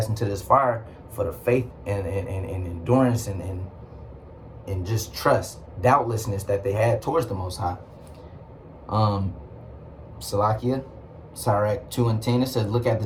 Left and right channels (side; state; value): both; identical; correlation 1.00